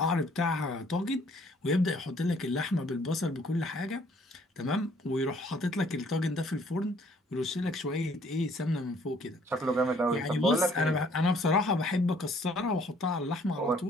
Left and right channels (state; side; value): normal; both; correlation 0.60